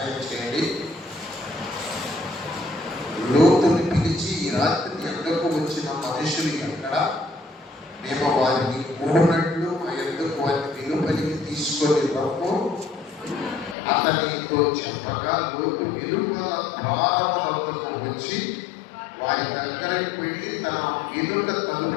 చేయండి. లోతుని పిలిచి, ఈ రాత్రి ఎండకు వచ్చిన మనుషులు ఎక్కడ? మేము వారిని కూడినట్లు మా ఎందుకు వారిని వెలుపలికి తీసుకొని రమ్ము అతనితో చెప్పగా, లోతు వెలుపల ద్వారమునకు వచ్చి వారి దగ్గరకు వెళ్ళి తన వెనుక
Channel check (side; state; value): right; drops out; at 13.8 s